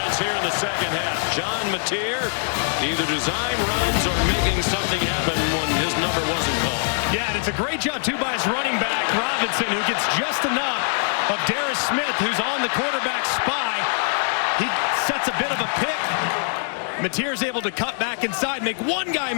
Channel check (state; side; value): silent; right; digital silence